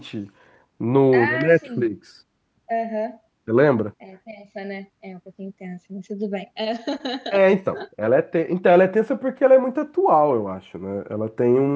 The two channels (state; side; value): identical; both; correlation 1.00